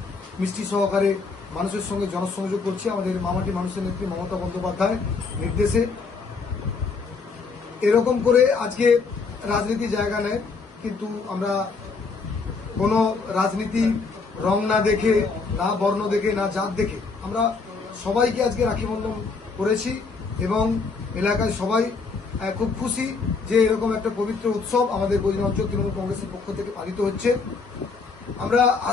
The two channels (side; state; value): right; quieter; 4.6 dB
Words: মিষ্টি সহকারে মানুষের সঙ্গে জনসংযোগ করছি। আমাদের মামাটি মানুষের নেত্রী মমতা বন্দ্যোপাধ্যায় নির্দেশে এরকম করে আজকে রাজনীতি জায়গা নেয়, কিন্তু আমরা কোনো রাজনীতি রং না দেখে, না বর্ণ দেখে, না জাত দেখে আমরা সবাইকে আজকে রাখি বন্ধন করেছি এবং এলাকায় সবাই খুব খুশি যে এরকম একটা পবিত্র উৎসব আমাদের গজনি অঞ্চল তৃণমূল কংগ্রেসের পক্ষ থেকে পালিত হচ্ছে। আমরা